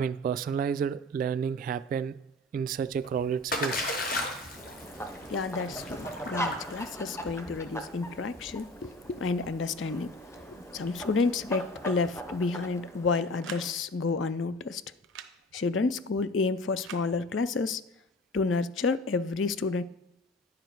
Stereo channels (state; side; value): normal; both; correlation 0.40